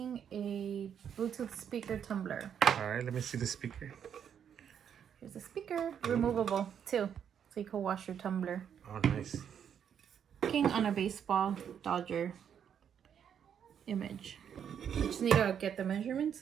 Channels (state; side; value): quieter; left; 8.4 dB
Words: a Bluetooth speaker tumbler. All right, let me see the speaker. Here's the speaker, removable too, so you can wash your tumbler. Oh, nice. Working on a baseball Dodger image. I just need to get the measurements